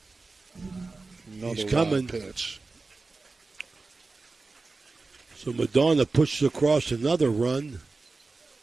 Another He's coming. Pitch. So Madonna pushes across another run.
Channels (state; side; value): quieter; left; 3.8 dB